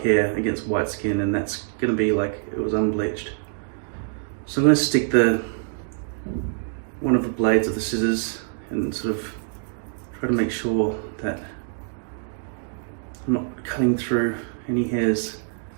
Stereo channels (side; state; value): left; silent; digital silence